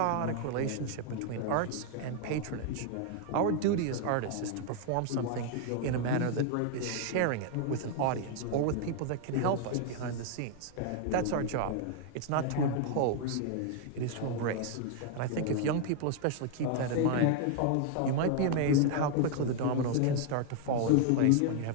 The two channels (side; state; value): both; different; correlation 0.00